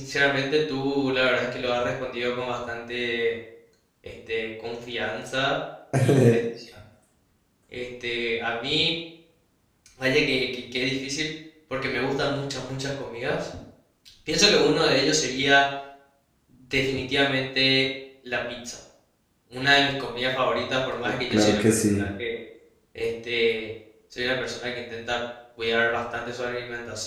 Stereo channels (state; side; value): identical; both; correlation 1.00